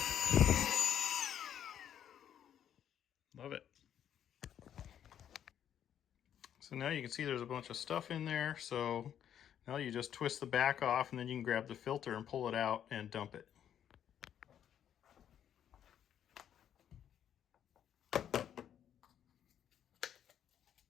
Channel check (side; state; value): right; quieter; 9.7 dB